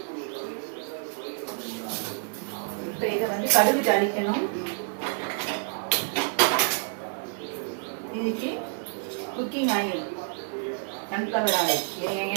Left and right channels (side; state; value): left; silent; digital silence